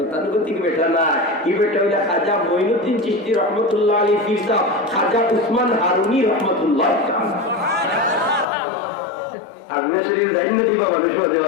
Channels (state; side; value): drops out; right; at 8.5 s